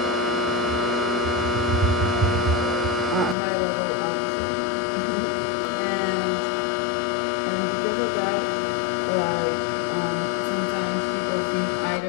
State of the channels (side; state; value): right; drops out; at 3.4 s